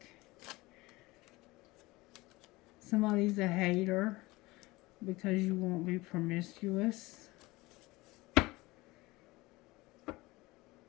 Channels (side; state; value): right; quieter; 21.1 dB